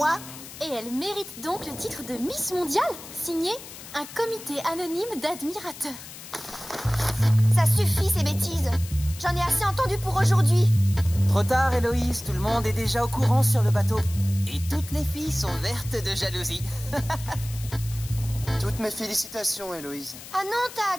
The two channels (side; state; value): left; noise; hiss, 14 dB below the sound